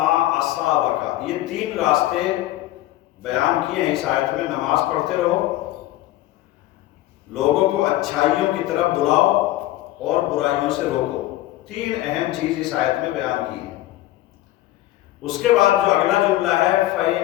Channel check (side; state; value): right; quieter; 15.6 dB